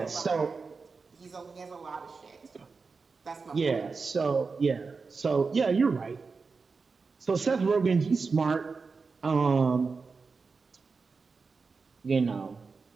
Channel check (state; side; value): quieter; left; 4.6 dB